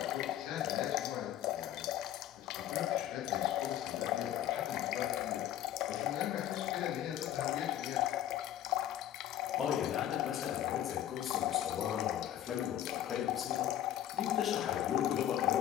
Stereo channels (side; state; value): right; quieter; 11.8 dB